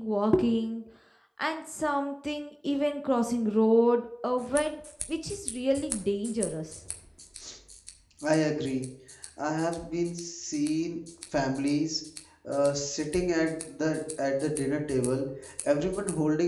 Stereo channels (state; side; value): identical; both; correlation 1.00